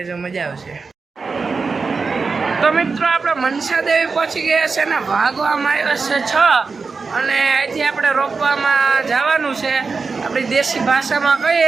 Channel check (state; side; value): quieter; left; 4.6 dB